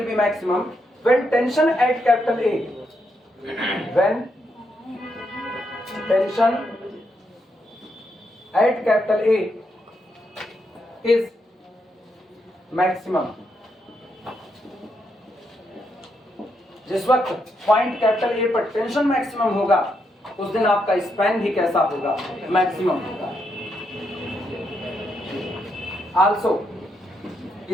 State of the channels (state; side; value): normal; both; correlation 0.80